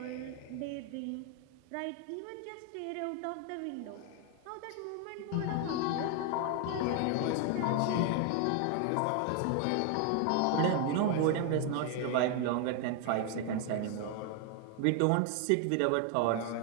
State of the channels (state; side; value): different; both; correlation 0.00